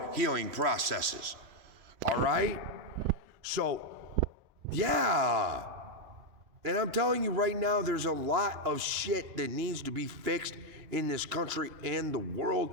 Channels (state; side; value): late; left; 3.0 ms